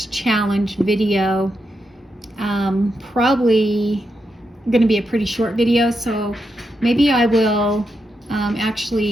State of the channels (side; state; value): both; normal; correlation 0.84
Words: challenge video, probably going to be a pretty short video, so maybe I will